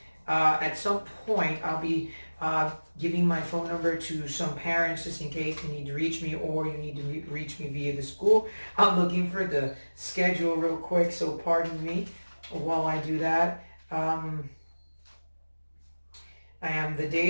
at some point, I'll be giving my phone number to some parents just in case you need to reach me or you need to reach me via the school. I'm looking for the schedule real quick, so pardon me while I do that. The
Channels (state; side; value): inverted; both; correlation -1.00